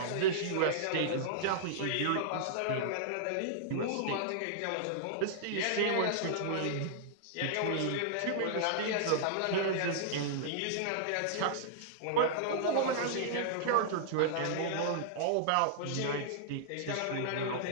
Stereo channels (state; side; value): different; both; correlation -0.01